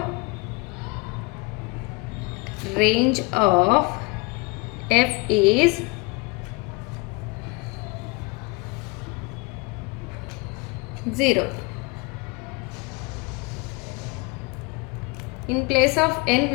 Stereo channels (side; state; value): right; quieter; 27.3 dB